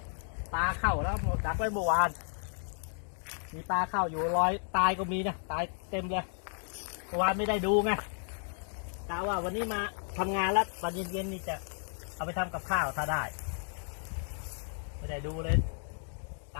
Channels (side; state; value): right; silent; 56 dB below the other